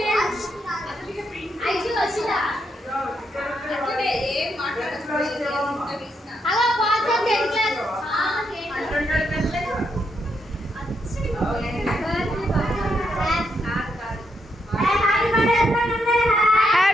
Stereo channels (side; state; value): both; normal; correlation 0.80